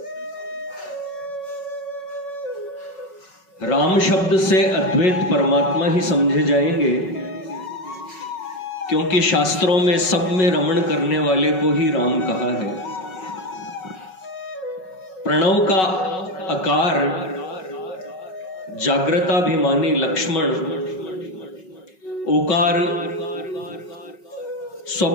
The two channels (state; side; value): late; right; 5.4 ms